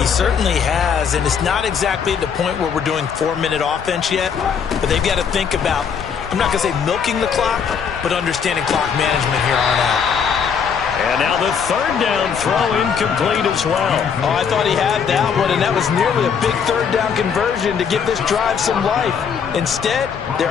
certainly has, and it's not exactly at the point where we're doing 4-minute offense yet, but they've got to think about, I'm not going to say milking the clock, but understanding clock management here on out. And now the 3rd down throw incomplete as well. Oh, I thought he had that one, and that was nearly a big 3rd down conversion to give this drive some life. Instead,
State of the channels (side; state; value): right; quieter; 6.9 dB